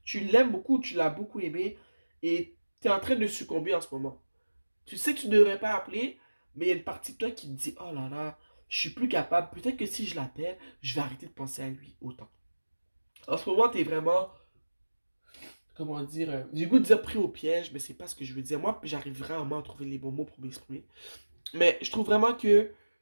Tu l'aimes beaucoup, tu l'as beaucoup aimé et tu es en train de succomber en ce moment. Tu sais que tu ne devrais pas appeler, mais il y a une partie de toi qui te dit, oh là là, je suis plus capable. Peut-être que si je l'appelle, je vais arrêter de penser à lui autant. En ce moment, tu es vraiment, comment dire, j'ai le goût de dire pris au piège, mais c'est pas ce que je veux dire. Moi, j'arrive vraiment à trouver les bons mots pour m'exprimer. Mais je trouve vraiment que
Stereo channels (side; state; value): both; inverted; correlation -1.00